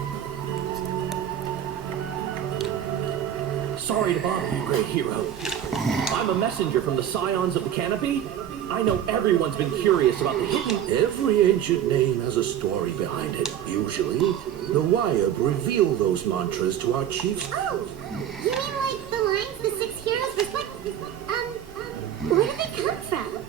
Sorry to bother you, great hero. I'm a messenger from the Scions of the Canopy. I know everyone's been curious about the hidden... Every ancient name has a story behind it. Usually, the Wyab reveal those mantras to our chiefs. Oh, you mean like the lines the six heroes reflect? Where do they come from?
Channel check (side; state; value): left; quieter; 10.1 dB